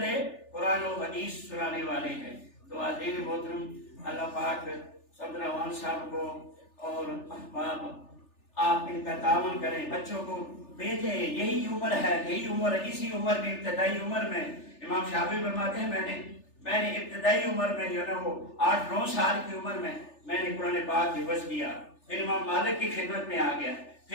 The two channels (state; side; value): late; right; 3.4 ms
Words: قرآن و حدیث سنانے والے ہیں۔ تو عزیز محترم، اللہ پاک صدر روان صاحب کو اور احباب آپ ان کا تعاون کریں، بچوں کو بھیجیں، یہی عمر ہے، یہی عمر، اسی عمر میں، ابتدائی عمر میں امام شافعی فرماتے ہیں میں نے ابتدائی عمر میں جو نا وہ 8-9 سال کی عمر میں نے قرآن پاک حفظ کیا، پھر امام مالک کی خدمت میں آ گیا،